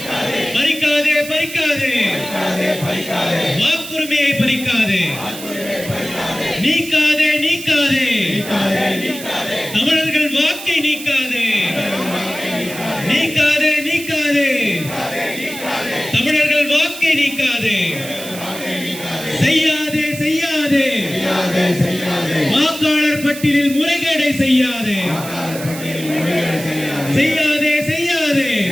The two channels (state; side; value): noise; right; hiss, 12 dB below the sound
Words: பறிக்காதே பறிக்காதே வாக்குரிமையை பறிக்காதே, நீக்காதே நீக்காதே தமிழர்கள் வாக்கை நீக்காதே, நீக்காதே நீக்காதே தமிழர்கள் வாக்கை நீக்காதே, செய்யாதே செய்யாதே வாக்காளர் பட்டியலில் முறைகேடை செய்யாதே, செய்யாதே செய்யாதே